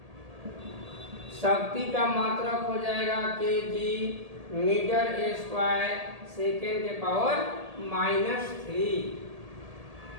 शक्ति का मात्रक हो जाएगा केजी मीटर स्क्वायर सेकेंड के पावर -3।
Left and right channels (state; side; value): late; left; 1.8 ms